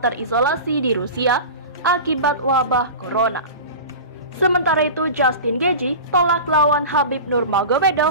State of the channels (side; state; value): both; inverted; correlation -0.32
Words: di Rusia akibat wabah corona. Sementara itu, Justin Gaethje tolak lawan Khabib